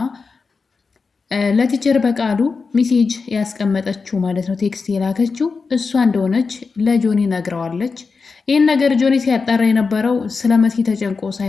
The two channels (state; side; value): quieter; right; 4.7 dB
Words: ለቲቸር በቃሉ ሜሴጅ ያስቀመጠችው ማለት ነው፣ ቴክስት የላከችው እሷ እንደሆነች ለጆኒ ነግረዋለች። ይህን ነገር ጆኒ ሲያጣራ የነበረው ስለ መሲ ተጨንቆ